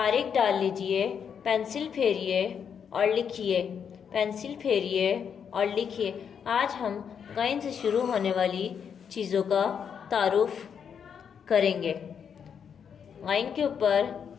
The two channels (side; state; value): right; quieter; 7.4 dB